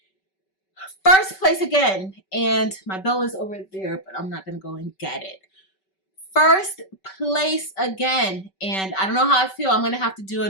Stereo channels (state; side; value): late; right; 5.2 ms